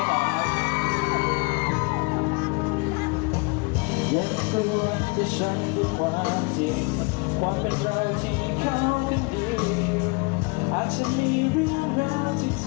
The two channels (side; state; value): right; quieter; 29.6 dB